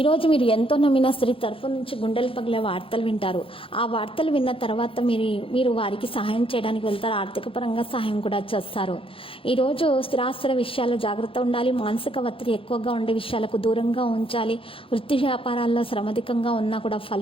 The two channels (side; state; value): right; late; 0.26 ms